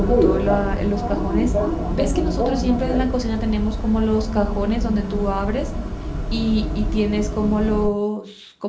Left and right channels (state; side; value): identical; both; correlation 1.00